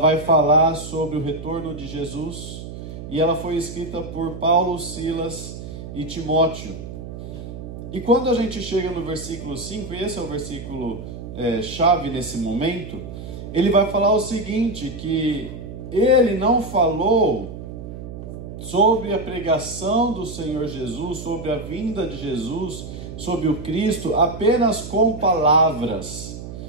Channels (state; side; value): noise; right; hum, 10 dB below the sound